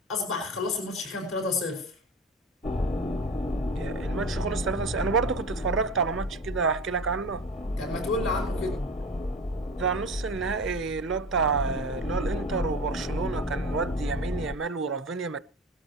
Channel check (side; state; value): both; normal; correlation 0.30